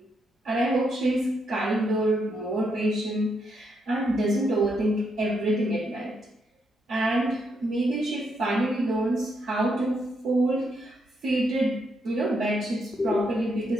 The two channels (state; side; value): normal; both; correlation 0.78